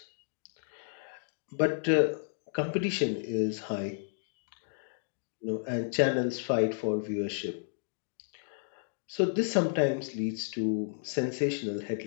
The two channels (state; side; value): silent; right; digital silence